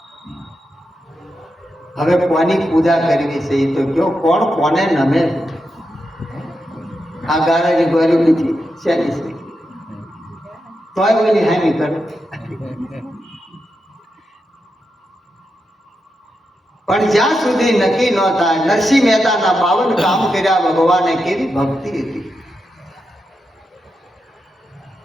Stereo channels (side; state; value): both; normal; correlation 0.87